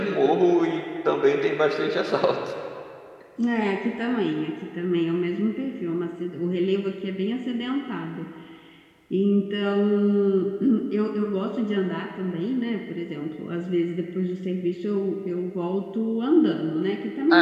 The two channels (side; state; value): both; identical; correlation 1.00